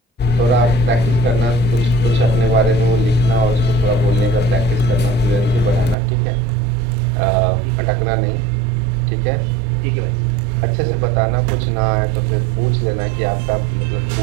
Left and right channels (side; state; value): left; drops out; at 6.0 s